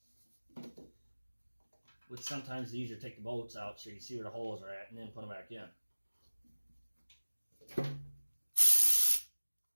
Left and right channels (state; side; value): inverted; both; correlation -1.00